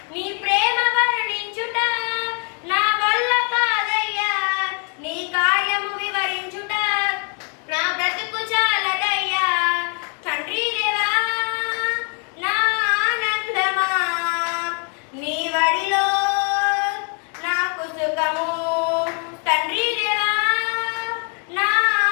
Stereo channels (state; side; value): quieter; right; 39.4 dB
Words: నీ ప్రేమ వర్ణించుట నా వల్ల కాదయ్యా నీ కార్యము వివరించుట నా బ్రతుకు చాలదయ్యా తండ్రి దేవా నా ఆనందమా నీ వడిలో నాకు సుఖము తండ్రి దేవా నా